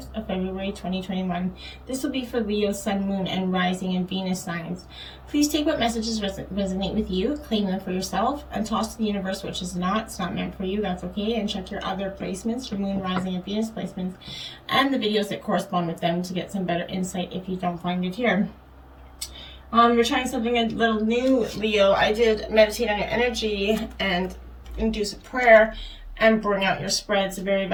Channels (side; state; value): both; identical; correlation 1.00